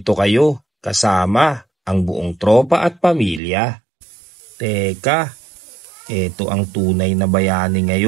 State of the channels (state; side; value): drops out; left; at 3.4 s